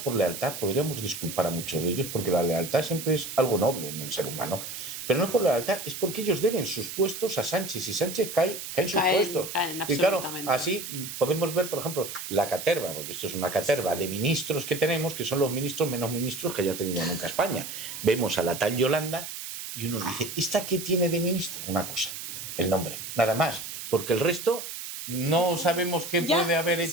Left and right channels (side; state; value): right; noise; hiss, 8 dB below the sound